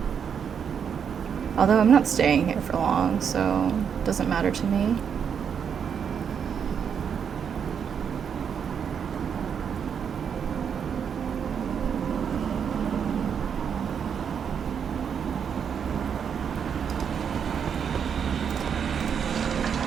Although I'm not staying here for long, so it doesn't matter to me.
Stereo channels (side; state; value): left; quieter; 7.4 dB